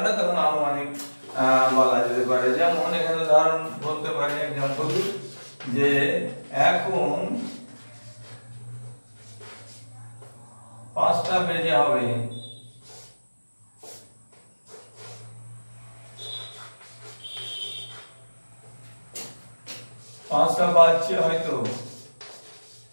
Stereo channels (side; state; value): both; inverted; correlation -1.00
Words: না, তখন আনুমানিক বলা যেতে পারে। যেমন এখানে উদাহরণ বলতে পারি, এক্সাম্পল, যে এখন 5টা বেজে হবে, পাঁচটা বাজছে হয়তো,